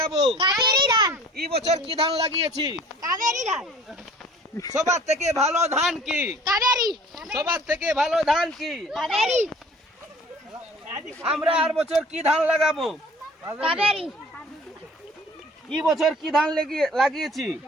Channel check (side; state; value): both; normal; correlation 0.49